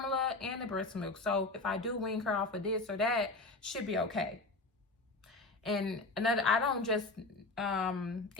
and the breast milk. So if I do wean her off of this or that, she'll be okay. And another, I don't just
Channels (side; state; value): right; quieter; 3.2 dB